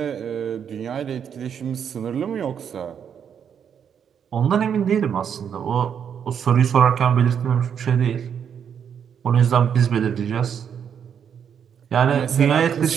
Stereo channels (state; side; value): quieter; left; 7.9 dB